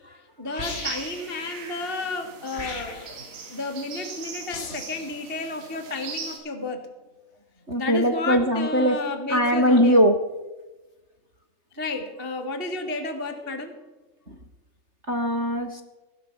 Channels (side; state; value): left; late; 3.1 ms